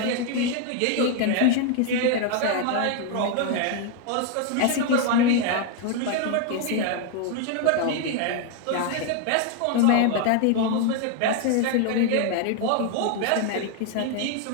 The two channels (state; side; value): different; both; correlation 0.01